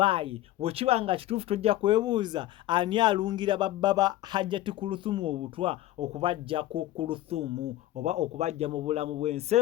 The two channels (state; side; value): quieter; right; 14.9 dB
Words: bwekiba nga kituufu tojja kwebuuza ani alungira babba ba Hajati Kuluthum obutwa okubajja ku Kuluthum oba okubajja mu bulamu bw'ensi